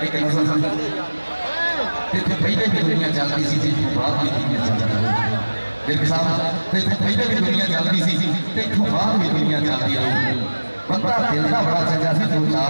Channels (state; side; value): inverted; both; correlation -1.00